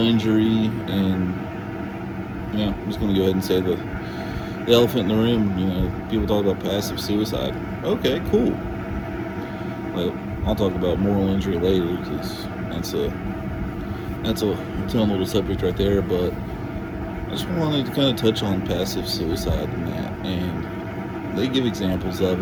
and, yeah, I'm just going to go ahead and say the elephant in the room. People talk about passive suicide. Okay, cool. Well, I'll talk about moral injury later because that's a its own little subject right there. But I just wanted to kind of touch on passive suicide and that, and they give examples of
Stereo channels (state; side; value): identical; both; correlation 1.00